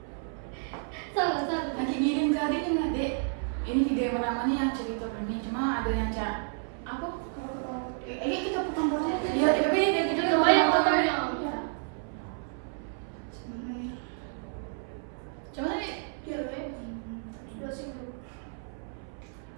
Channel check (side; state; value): left; silent; 57 dB below the other